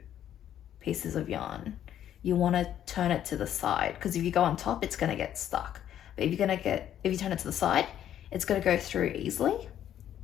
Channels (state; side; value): quieter; right; 10.8 dB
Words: pieces of yarn, you want to turn it to the side, because if you go on top, it's going to get stuck. But if you turn it to the side, it's going to go through easily.